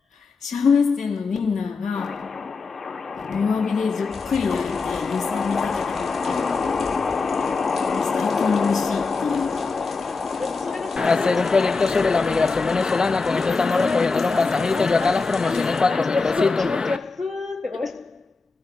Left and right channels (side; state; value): right; quieter; 4.3 dB